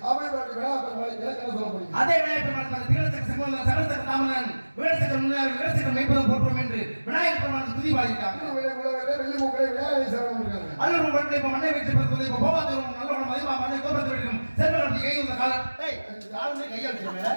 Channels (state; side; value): inverted; both; correlation -1.00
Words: அதே விநாயகர் பெருமாள் சகலசக தாமனன் வீரசக்கர முன்னாடி வீரசக்கர மெய்ப்பதம் போற்றுவோம் என்று விநாயகர் பெருமாள் துதி பாடிட்டாங்க அல்லூர் மண்ணை இப்ப மண்ணை வைத்து பிறகு இப்ப போவாதூர் நல்ல குணம் மதிமா மண்ணை கோபத்தை வைக்கும் செல்வம் கை உள்ள காலம் காலமே கையா